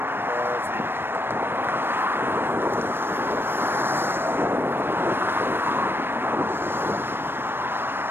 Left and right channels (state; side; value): late; left; 0.10 ms